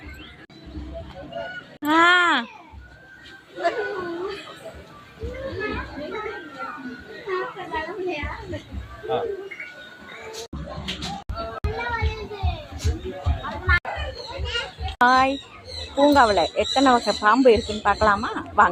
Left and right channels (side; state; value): both; identical; correlation 1.00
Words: ஹாய், பூங்காவில் எத்தனை வகை பாம்பு இருக்குன்னு பார்க்கலாமா?